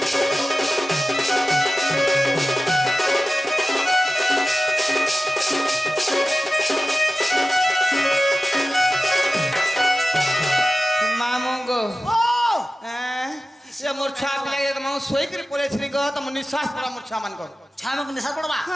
মামু গো ও সে মোর ছুয়া পিলাকে মামু শোইকি পড়েছিলি গো তম নিঃশ্বাস পড়া মোর ছুয়া মান গো ছামক নিশা পড়বা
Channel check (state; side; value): normal; both; correlation 0.94